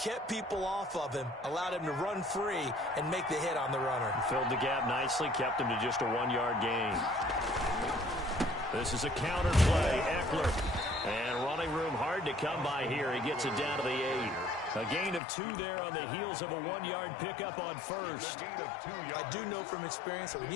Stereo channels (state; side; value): drops out; right; at 15.2 s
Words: people off of him, allowed him to run free, and make the hit on the runner. Filled the gap nicely, kept him to just a 1-yard gain. This is a counter play, Eckler. And running room hard to come by here. He gets it down to the 8. A gain of 2 there on the heels of a 1-yard pickup on first. I do know from experience that when